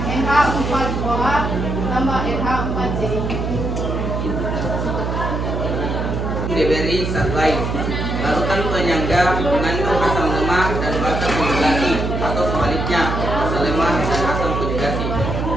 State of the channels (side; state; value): right; noise; hum, 2 dB below the sound